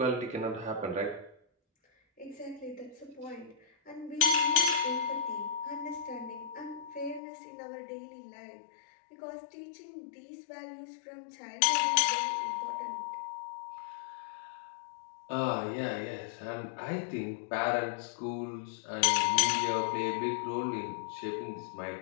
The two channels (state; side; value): drops out; right; at 7.2 s